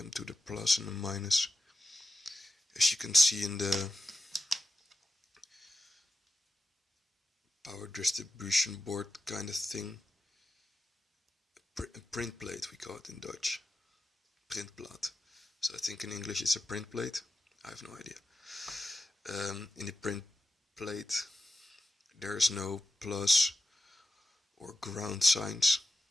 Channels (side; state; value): both; normal; correlation 0.90